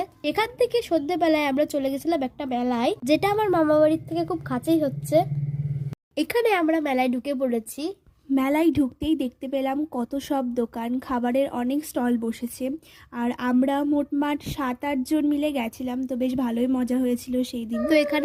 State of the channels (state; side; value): identical; both; correlation 1.00